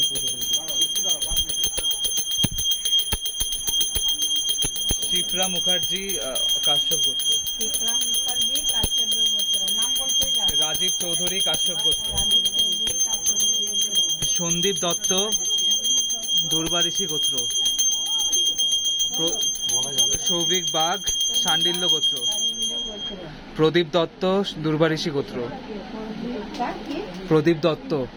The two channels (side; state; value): both; identical; correlation 1.00